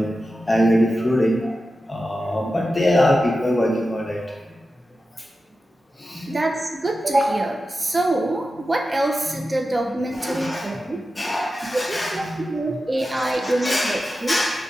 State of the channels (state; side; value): normal; both; correlation 0.92